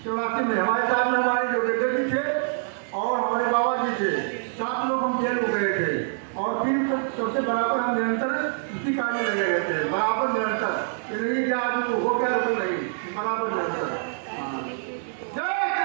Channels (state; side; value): silent; left; digital silence